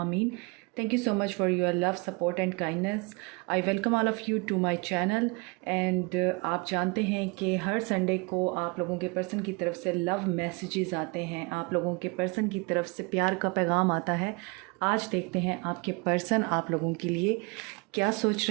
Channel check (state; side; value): quieter; left; 29.4 dB